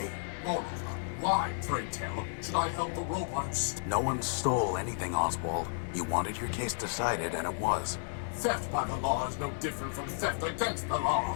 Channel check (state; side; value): silent; right; 56 dB below the other